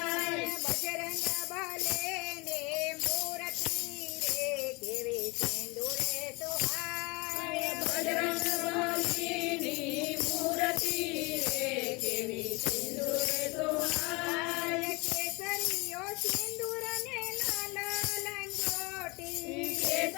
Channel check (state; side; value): quieter; right; 26.7 dB